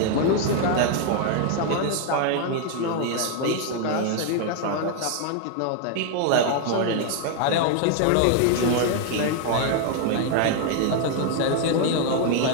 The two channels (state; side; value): different; both; correlation 0.00